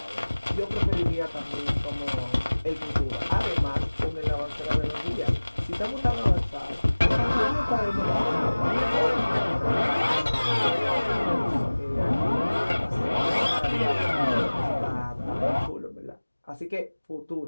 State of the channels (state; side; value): inverted; both; correlation -1.00